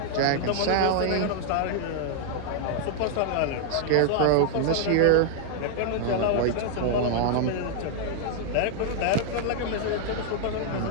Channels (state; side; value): different; both; correlation 0.00